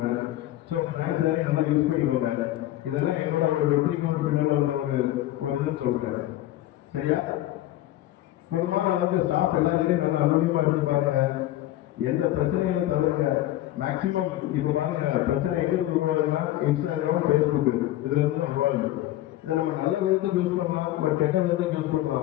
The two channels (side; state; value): right; quieter; 14.8 dB